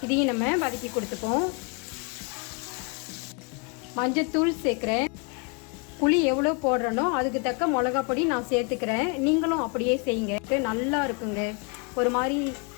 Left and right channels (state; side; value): quieter; right; 34.7 dB